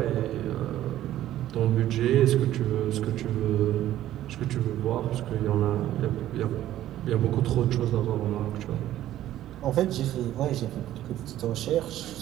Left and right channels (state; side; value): quieter; left; 13.1 dB